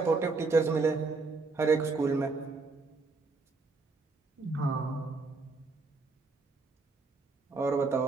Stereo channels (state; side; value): quieter; left; 3.9 dB